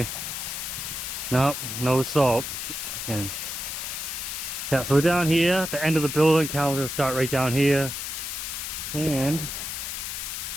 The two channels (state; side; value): noise; left; hiss, 5 dB below the sound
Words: No, no salt. Okay. Yeah, so we're down here at the end of the building. Callum's gonna start right down here. And